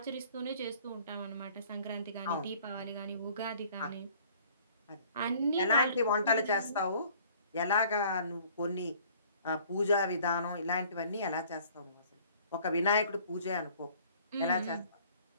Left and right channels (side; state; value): both; inverted; correlation -0.54